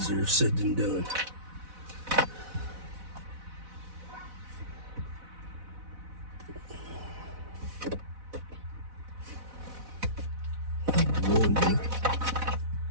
said than done. go.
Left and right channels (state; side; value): late; left; 4.0 ms